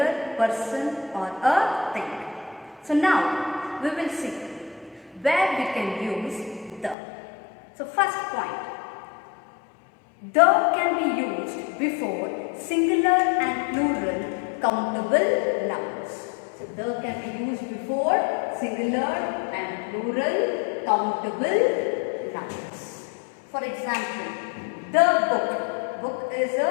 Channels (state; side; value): drops out; right; at 7.0 s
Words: person or a thing. So, now we will see where we can use the. So, first point, the can be used before singular and plural countable nouns. So, the can be used before singular and plural countable nouns. For example, the book. Book is